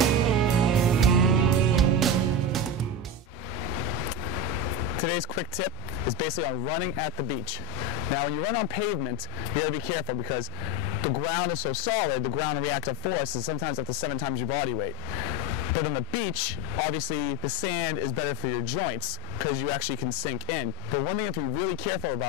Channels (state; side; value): normal; both; correlation 0.17